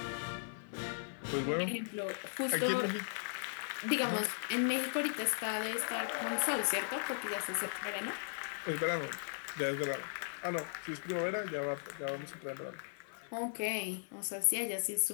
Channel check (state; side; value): silent; right; 53 dB below the other